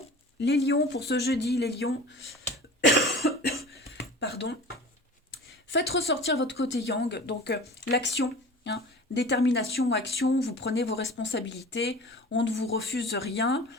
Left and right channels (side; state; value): both; normal; correlation 0.39